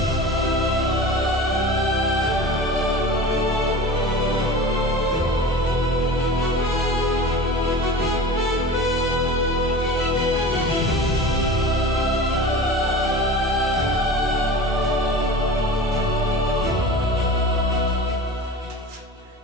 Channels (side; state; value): both; normal; correlation 0.35